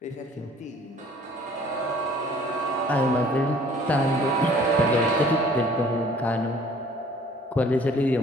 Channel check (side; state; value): both; normal; correlation 0.54